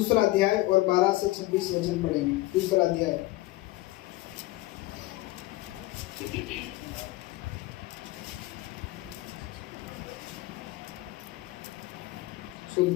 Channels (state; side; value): quieter; right; 18.8 dB